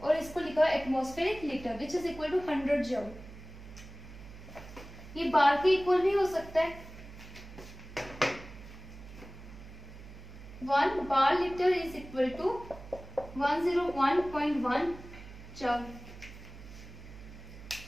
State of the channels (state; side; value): noise; right; hum, 15 dB below the sound